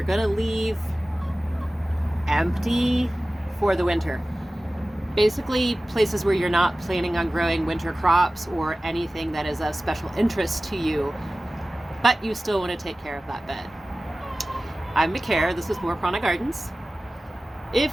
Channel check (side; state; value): both; normal; correlation 0.96